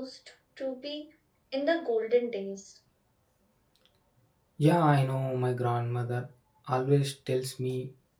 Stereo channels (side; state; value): both; identical; correlation 1.00